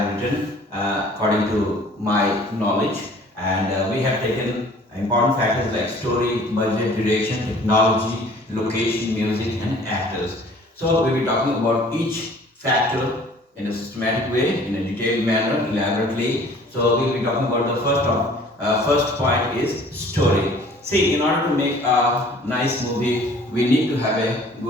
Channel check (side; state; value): both; normal; correlation 0.52